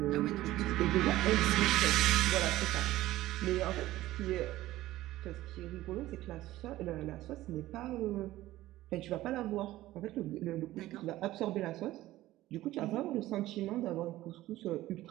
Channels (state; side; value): quieter; left; 15.9 dB